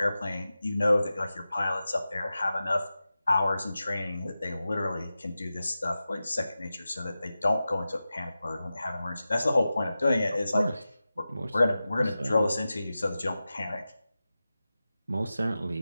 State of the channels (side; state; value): both; inverted; correlation -0.94